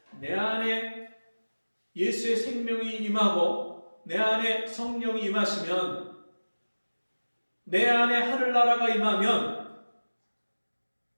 내 안에 예수의 생명이 임하고 내 안에 성령이 임하시면, 내 안에 하늘나라가 임하면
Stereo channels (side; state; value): both; inverted; correlation -1.00